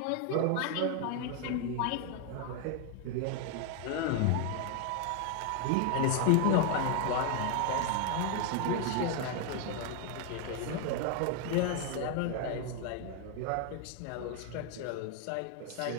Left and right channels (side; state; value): both; different; correlation 0.00